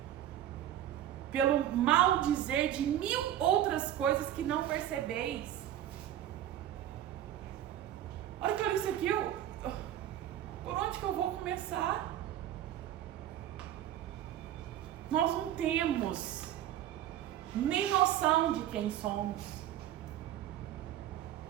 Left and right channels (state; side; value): quieter; left; 11.9 dB